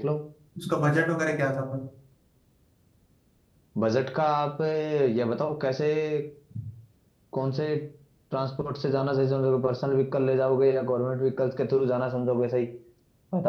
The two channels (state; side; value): identical; both; correlation 1.00